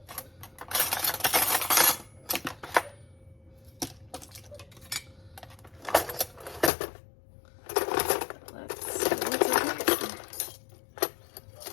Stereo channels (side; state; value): right; drops out; at 6.7 s